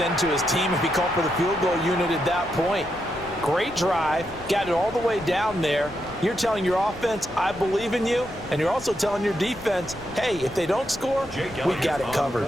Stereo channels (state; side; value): noise; left; rumble, 20 dB below the sound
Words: to his team if he called for the field goal unit at that point. Great drive, got it all the way down there. You're telling your offense, I believe in you, and you're also telling your defense, hey, if they don't score, we got it covered.